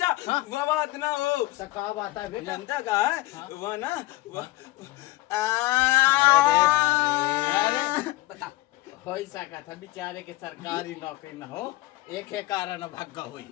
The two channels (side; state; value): right; quieter; 18.9 dB